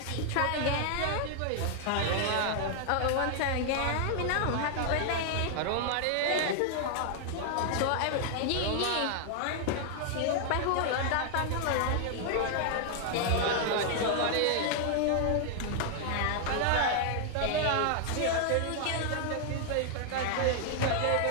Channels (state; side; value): different; both; correlation 0.00